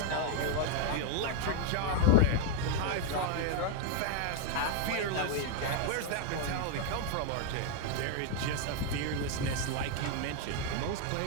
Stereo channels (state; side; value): different; both; correlation 0.00